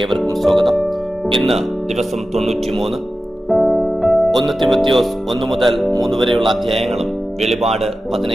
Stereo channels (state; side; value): normal; both; correlation 0.94